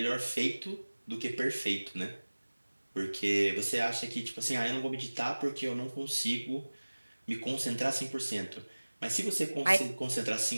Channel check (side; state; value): both; inverted; correlation -1.00